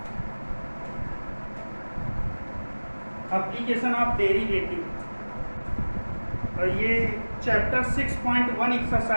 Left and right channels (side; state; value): both; inverted; correlation -1.00